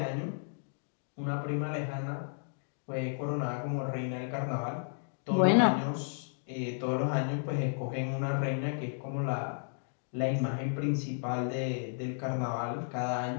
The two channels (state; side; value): silent; right; digital silence